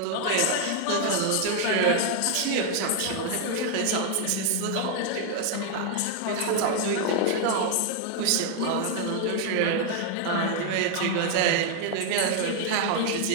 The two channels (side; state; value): both; different; correlation 0.00